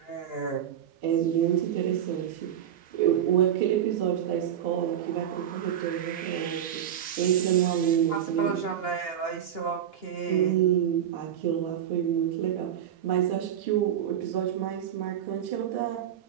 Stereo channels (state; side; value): quieter; left; 10.0 dB